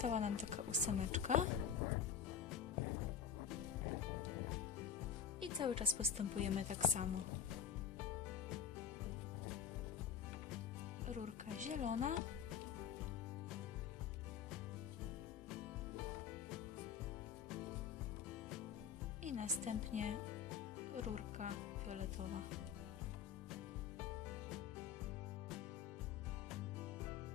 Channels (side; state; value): right; quieter; 7.9 dB